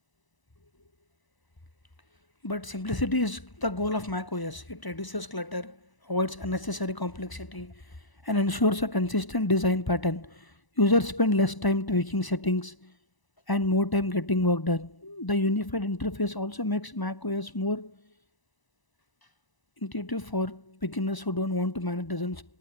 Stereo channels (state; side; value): late; right; 1.0 ms